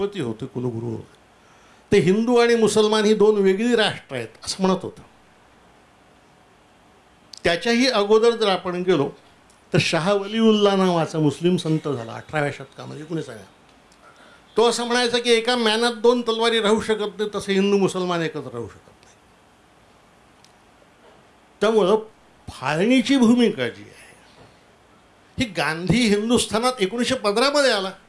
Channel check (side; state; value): both; identical; correlation 1.00